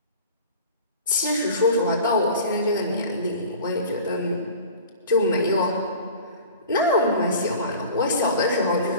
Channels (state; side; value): inverted; both; correlation -0.41